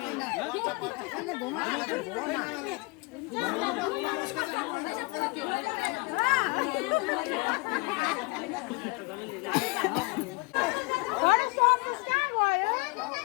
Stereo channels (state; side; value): quieter; right; 27.7 dB